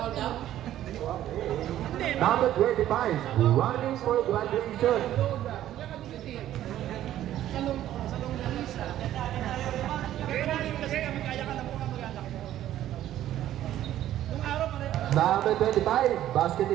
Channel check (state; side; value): quieter; left; 12.6 dB